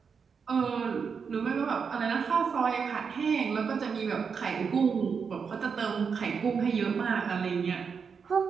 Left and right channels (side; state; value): left; quieter; 6.0 dB